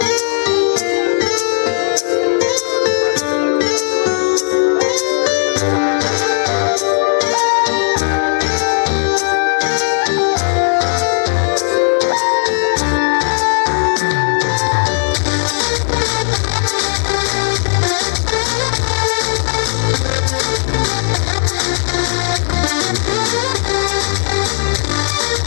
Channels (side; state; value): right; silent; digital silence